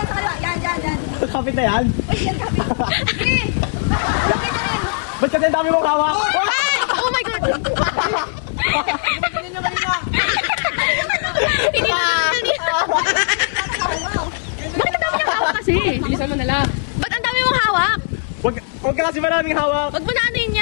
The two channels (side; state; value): right; silent; 65 dB below the other